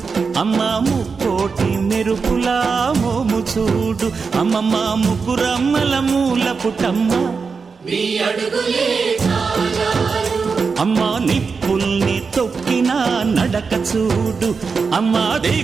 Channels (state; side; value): quieter; left; 5.1 dB